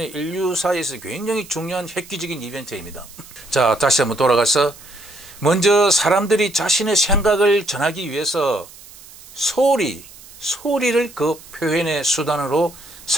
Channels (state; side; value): noise; right; hiss, 20 dB below the sound